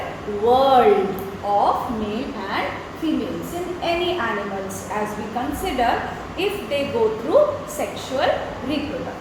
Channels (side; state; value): both; identical; correlation 1.00